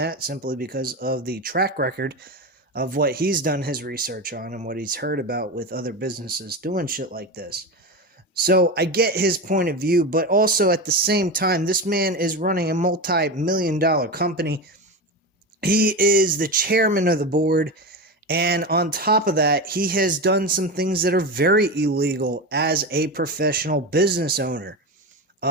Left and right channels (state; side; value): normal; both; correlation 0.21